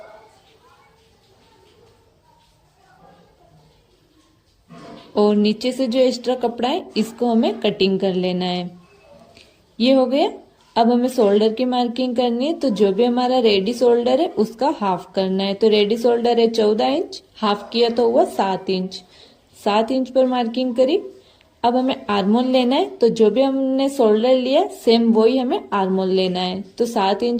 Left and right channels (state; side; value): identical; both; correlation 1.00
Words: और नीचे से जो एक्स्ट्रा कपड़ा है इसको हमें कटिंग कर लेना है। ये हो गया। अब हमें शोल्डर की मार्किंग करनी है, तो जो भी हमारा रेडी शोल्डर है उसका हाफ करना है। तो रेडी शोल्डर है 14 इंच, हाफ किया तो हुआ 7 इंच। 7 इंच पर मार्किंग करी। अब हमें आर्मोल लेना है, तो जो भी हमने शोल्डर लिया सेम वही हमें आर्मोल लेना है। तो 7